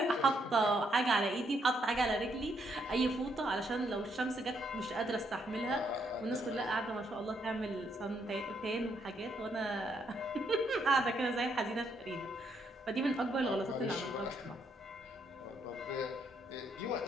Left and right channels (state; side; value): normal; both; correlation 0.74